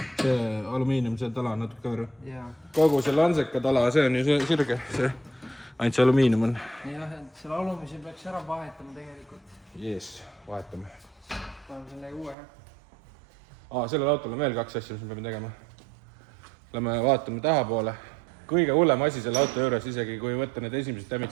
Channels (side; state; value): left; drops out; at 12.4 s